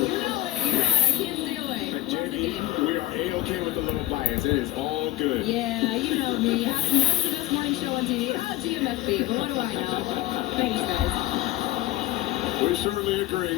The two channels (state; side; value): quieter; right; 15.5 dB